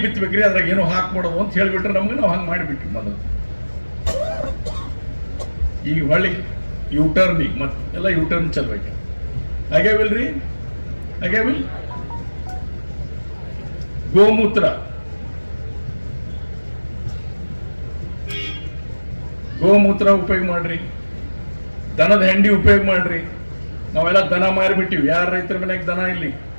ಬಿತ್ತಬೇಕ್ರಿ, ಅದ್ರಾಗ ಏನೋ ಹಾಕ್ಬಿಡೋದು ಅಂತ ಹೇಳ್ಬಿಟ್ರೆ ನಮ್ಗೆ ನಾವು ಹಂಗೆ ಮಾಡಿಬಿಟ್ವಿ ಮೊದಲು. ಈಗ ಹೊಳ್ಳಿ ಯೂಟರ್ನ್, ಈಗ ಮತ್ತೆ ಎಲ್ಲ ಯೂಟರ್ನ್ ಚಲ್ಬೇಕು. ಆಗ್ಯಾವಿಲ್ರಿ? ಆಗ್ಯಾವಿಲ್? ಗೋಮೂತ್ರ, ಉಪಯೋಗ ಮಾಡ್ರಿ. ದನದ ಹೆಂಡಿ ಉಪಯೋಗ ಮಾಡ್ರಿ. ನಾವೆಲ್ಲ ದನ ಮಾರಿಬಿಟ್ಟಿವಿ. ಯಾರ ರೈತರ ಮನೆಗೆ ದನ ಇಲ್ಲಿ?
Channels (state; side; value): inverted; both; correlation -1.00